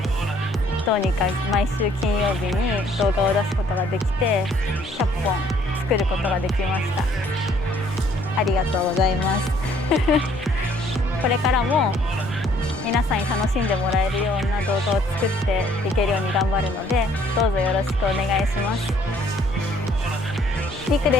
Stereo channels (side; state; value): both; normal; correlation 0.62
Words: どうにか毎週金曜日に動画を出すことができて100本作ることができました。ありがとうございますこれからも皆さんに楽しんでもらえるような動画を作っていけるように頑張るので、どうぞよろしくお願いします。りく